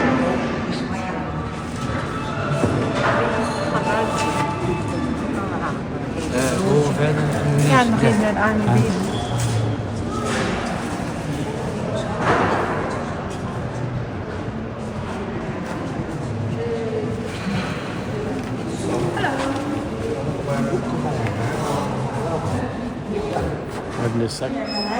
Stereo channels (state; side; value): identical; both; correlation 1.00